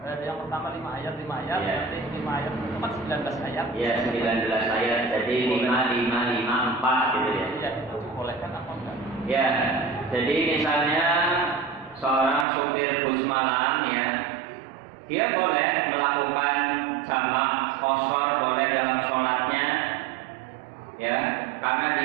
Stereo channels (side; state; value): left; drops out; at 12.5 s